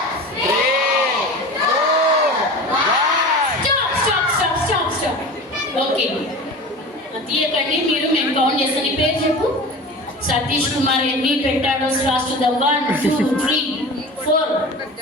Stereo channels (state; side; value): normal; both; correlation 0.34